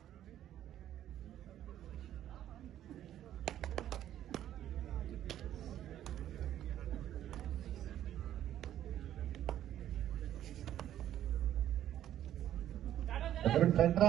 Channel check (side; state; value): left; quieter; 11.7 dB